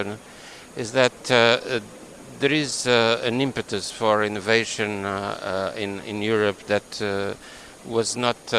is that there is an impetus for innovation in Europe that was not,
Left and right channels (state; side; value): identical; both; correlation 1.00